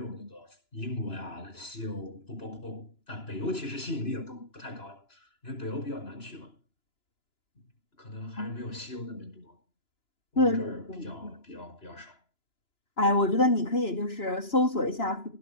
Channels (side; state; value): right; late; 2.9 ms